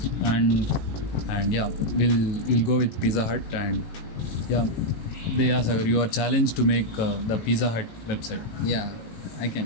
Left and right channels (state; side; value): late; right; 18 ms